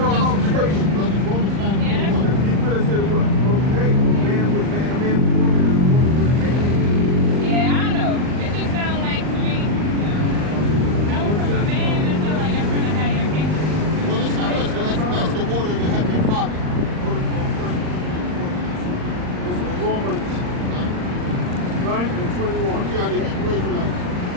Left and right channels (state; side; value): late; left; 39 ms